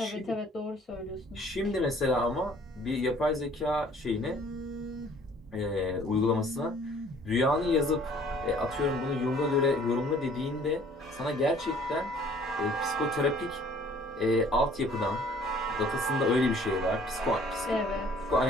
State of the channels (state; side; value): normal; both; correlation 0.55